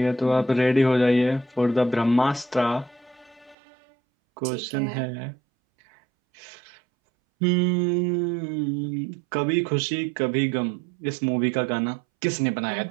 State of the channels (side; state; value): left; drops out; at 3.6 s